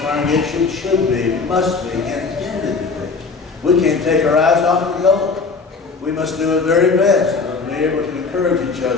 should be, must be, intended to be. We can't take our eyes off the goal. We must do our very best to be able to encourage each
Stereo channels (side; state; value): right; quieter; 4.5 dB